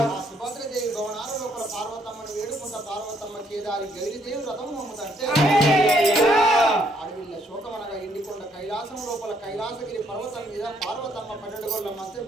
సుభద్రదేవి భవనాల లోపల పార్వతమ్మను వేడుకుంటా పార్వతమ్మ కేదారి గౌరీదేవి రథం నమ్ముతంటే అడవిల్ల శోకమనగా ఎండికొండ కైలాసం లోపల కైలాసగిరి పర్వతం మీద పార్వతమ్మ 12 గోళ్ళ మంచం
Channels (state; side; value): normal; both; correlation 0.70